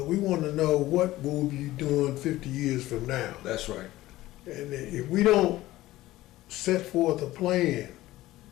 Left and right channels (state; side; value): quieter; right; 16.5 dB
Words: we want to know what we'll be doing 50 years from now. That's right. And if we don't set forth a plan